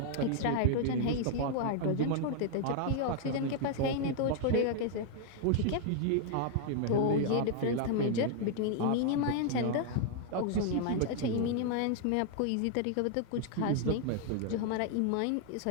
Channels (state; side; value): different; both; correlation 0.00